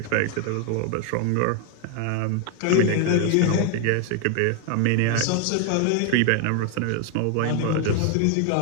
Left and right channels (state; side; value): different; both; correlation 0.00